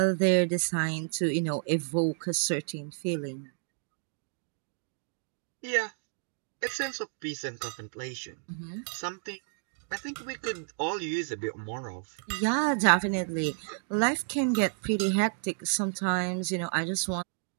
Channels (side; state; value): left; silent; digital silence